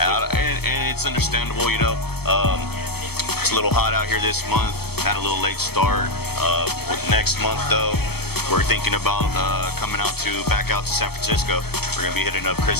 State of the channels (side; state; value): right; late; 0.96 ms